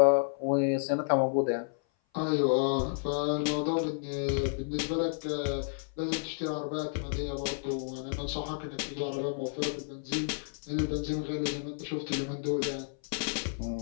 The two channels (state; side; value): silent; right; 55 dB below the other